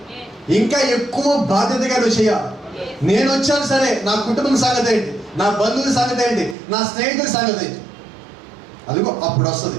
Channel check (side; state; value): left; drops out; at 6.6 s